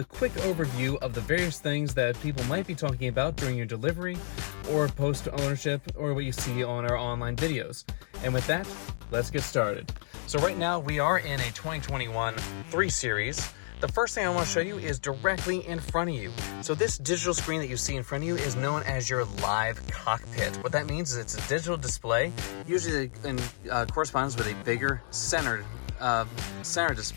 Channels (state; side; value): silent; right; digital silence